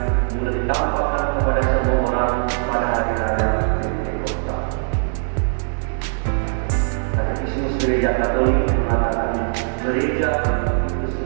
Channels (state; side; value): silent; left; digital silence